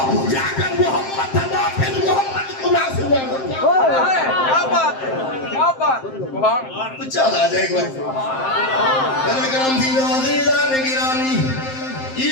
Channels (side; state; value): right; late; 7.6 ms